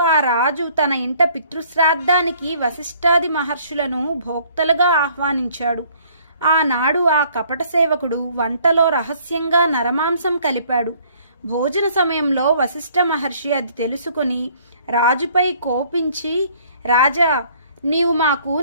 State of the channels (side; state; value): both; inverted; correlation -0.60